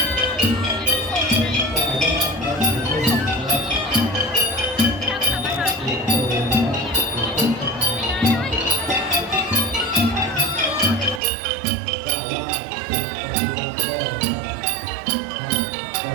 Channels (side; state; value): left; drops out; at 11.2 s